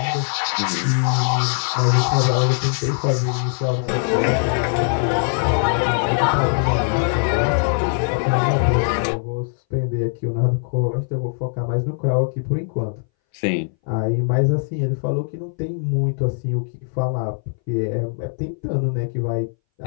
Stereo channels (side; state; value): right; silent; 62 dB below the other